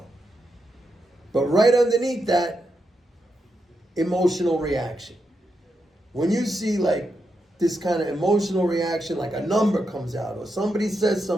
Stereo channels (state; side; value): normal; both; correlation 0.85